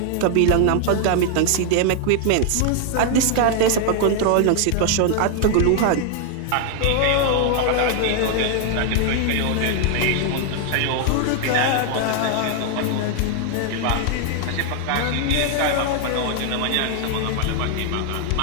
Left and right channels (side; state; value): both; different; correlation 0.00